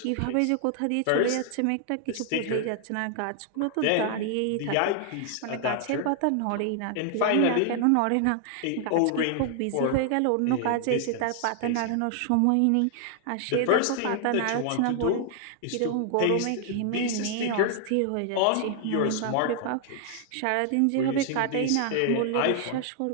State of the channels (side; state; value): both; different; correlation 0.00